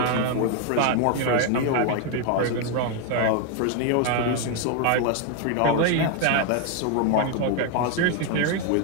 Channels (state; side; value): different; both; correlation 0.01